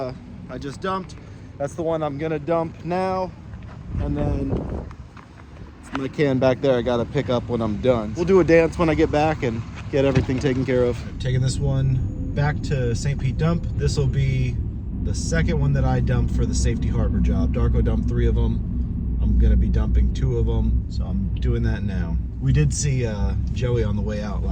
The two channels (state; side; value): identical; both; correlation 1.00